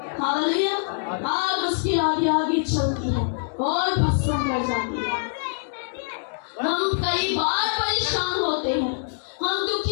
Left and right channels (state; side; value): silent; right; digital silence